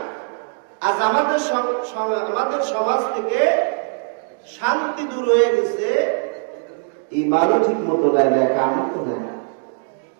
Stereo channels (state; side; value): silent; left; digital silence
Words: আজ আমাদের সমাজ থেকে শান্তি দূর হয়ে গেছে, ঈমানও ঠিক মতো নাই, নেক আমল তো নাই।